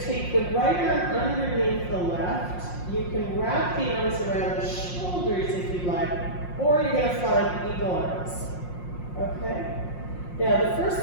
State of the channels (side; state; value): right; late; 5.6 ms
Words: take the right arm underneath the left. You can wrap the arms around the shoulders if you like, or you're going to find eagle arms. Okay? Now, the first